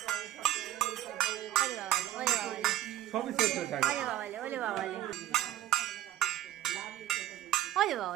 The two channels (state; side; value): quieter; left; 13.3 dB